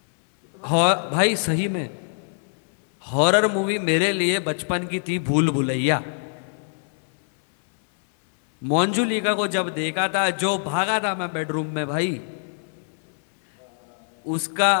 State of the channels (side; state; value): right; silent; 63 dB below the other